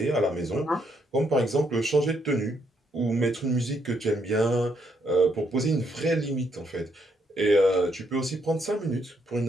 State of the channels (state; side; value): normal; both; correlation 0.74